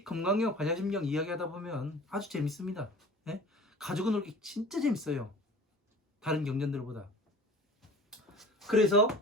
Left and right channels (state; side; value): normal; both; correlation 0.43